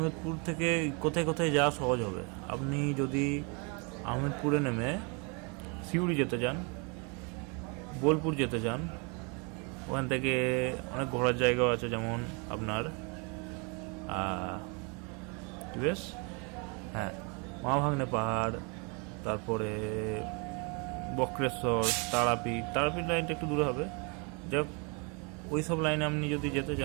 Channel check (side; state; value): left; quieter; 33.2 dB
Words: থেকে কোথায় কোথায় যাওয়া সহজ হবে, আপনি যদি আহমেদপুরে নেমে সিউড়ি যেতে চান, বোলপুর যেতে চান, ওখান থেকে অনেক ঘোরার জায়গাও আছে, যেমন আপনার বেশ মহাভাগ্নে পাহাড়, তারপরে বক্রেশ্বর, তারাপীঠ লাইনটা একটু দূরে হবে। যাক, ওই সব লাইনে আপনি যদি যেতে